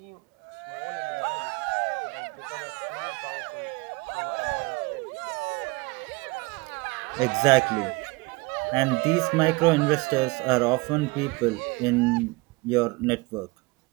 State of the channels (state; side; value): quieter; left; 24.8 dB